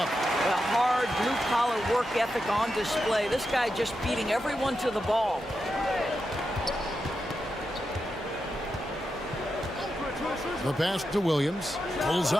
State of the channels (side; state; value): both; normal; correlation 0.87